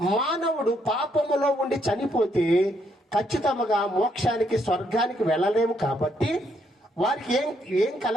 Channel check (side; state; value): both; normal; correlation 0.73